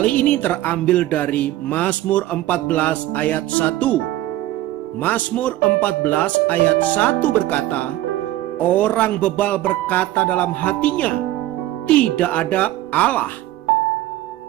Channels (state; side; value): quieter; left; 15.2 dB